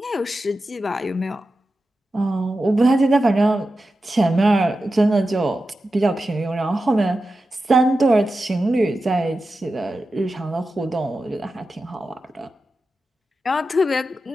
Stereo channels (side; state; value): both; normal; correlation 0.92